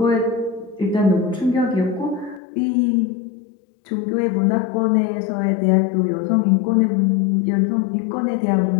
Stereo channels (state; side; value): drops out; right; at 2.4 s